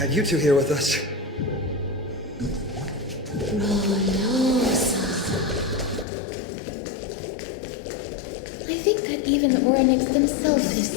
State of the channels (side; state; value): right; drops out; at 6.1 s